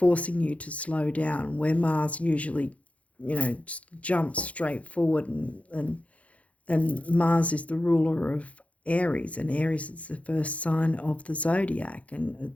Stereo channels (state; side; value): late; right; 0.065 ms